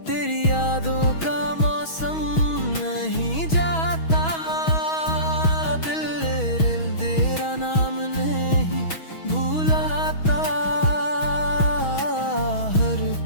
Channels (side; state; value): right; late; 6.2 ms